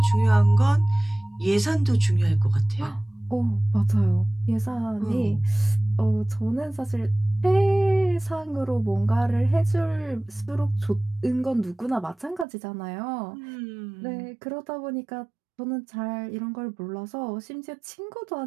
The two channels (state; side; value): drops out; left; at 12.5 s